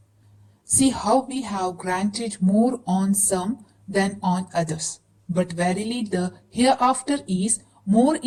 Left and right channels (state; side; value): identical; both; correlation 1.00